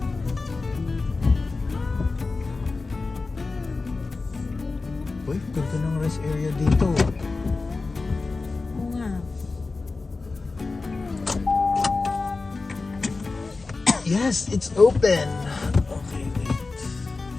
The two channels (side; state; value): right; quieter; 3.8 dB